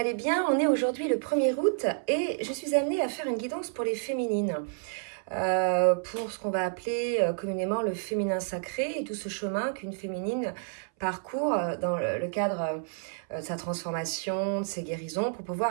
bien. On est aujourd'hui le 1er août et je suis amenée à faire une guidance pour les féminines. Pour ce qu'on va appeler communément le féminin sacré et tout ce chemin qu'une féminine parcourt dans le cadre de sa transformation, de ses guérisons pour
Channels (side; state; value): left; silent; 58 dB below the other